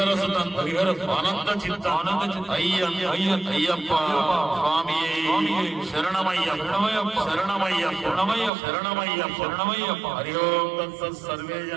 ఆనంద చిత్త అయ్యప్ప స్వామి శరణమయ్యప్ప శరణమయ్యప్ప హరి ఓం తత్సత్ సర్వే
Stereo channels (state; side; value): drops out; left; at 8.5 s